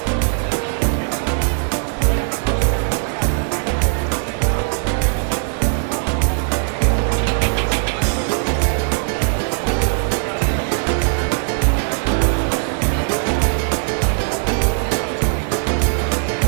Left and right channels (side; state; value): left; silent; digital silence